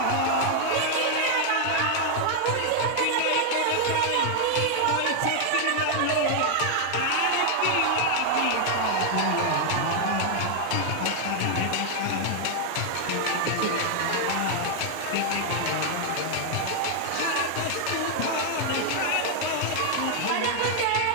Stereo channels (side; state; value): both; different; correlation 0.00